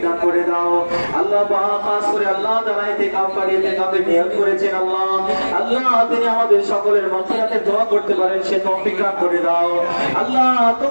দান করে দাও। আল্লাহ খাস করে আল্লাহ যারা ইতিকাফ করে ইতিকাফের নিয়ত করেছেন আল্লাহ তিনি আমাদের সকলের মাগফিরাতের দোয়া করতে পারেন সে তৌফিক দান করে দাও। আল্লাহ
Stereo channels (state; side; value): inverted; both; correlation -1.00